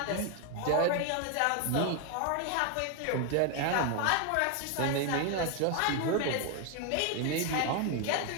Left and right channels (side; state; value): both; different; correlation 0.01